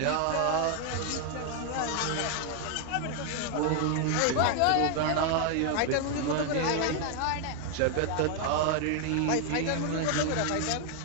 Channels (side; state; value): both; different; correlation 0.00